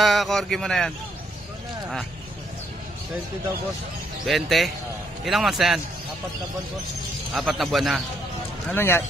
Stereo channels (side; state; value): both; normal; correlation 0.73